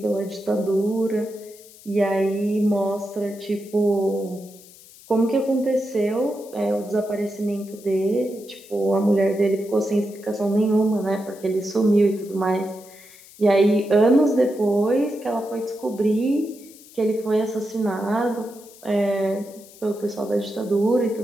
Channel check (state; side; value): noise; left; hiss, 22 dB below the sound